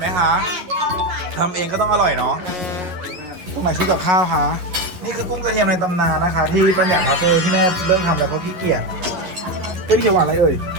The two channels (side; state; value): left; late; 11 ms